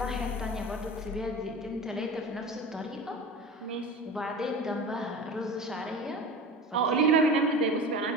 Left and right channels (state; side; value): normal; both; correlation 0.32